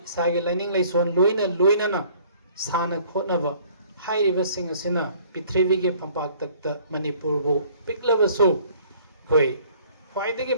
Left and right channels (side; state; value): both; inverted; correlation -0.56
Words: इसागे लाइनिंग लाइसोन लोइना साना खोनब हाइरिबसिंग असिना पृथ्वी के फंपाक तक मणिपुर बो पिकलबसु कोई ख्वाइदगी